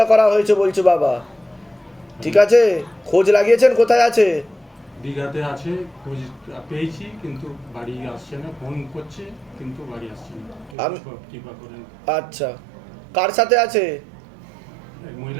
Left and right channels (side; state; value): left; drops out; at 10.8 s